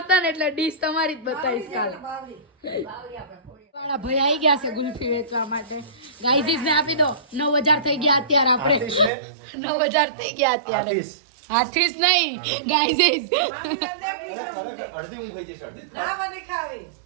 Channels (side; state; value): left; drops out; at 9.1 s